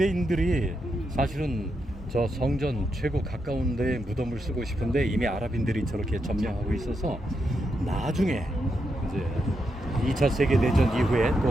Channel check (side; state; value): both; normal; correlation 0.83